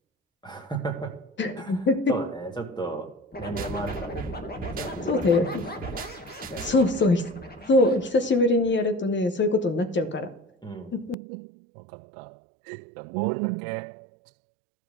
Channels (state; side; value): drops out; left; at 11.2 s